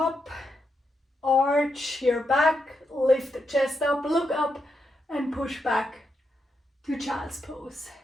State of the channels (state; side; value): normal; both; correlation 0.83